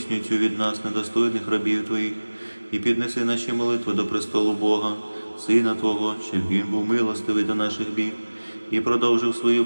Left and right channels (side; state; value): both; inverted; correlation -1.00